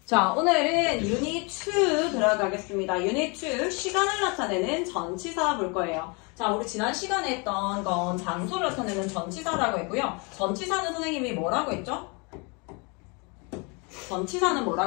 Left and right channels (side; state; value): right; quieter; 31.4 dB